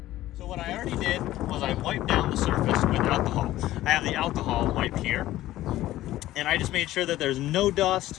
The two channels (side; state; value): right; quieter; 15.1 dB